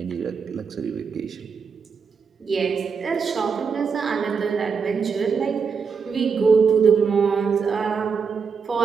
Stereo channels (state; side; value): quieter; left; 5.7 dB